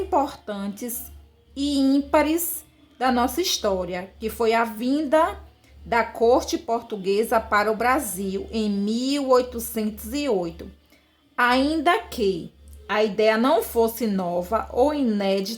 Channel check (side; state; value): both; identical; correlation 1.00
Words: e ímpares da nossa história, que foi a vinda da corte portuguesa para o Brasil em 1808. Ainda que a ideia não fosse nova ou